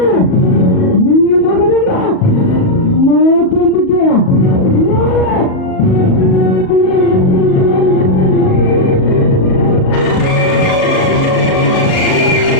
ఈ మగదున్న మాకెందుకే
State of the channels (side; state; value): right; late; 38 ms